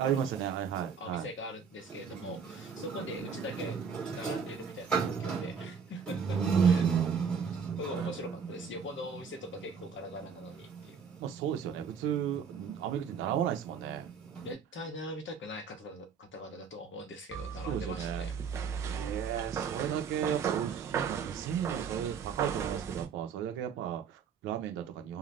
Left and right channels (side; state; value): left; quieter; 6.4 dB